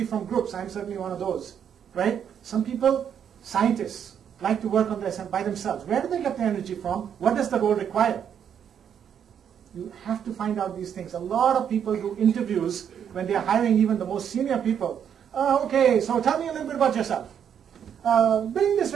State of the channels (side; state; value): left; quieter; 8.5 dB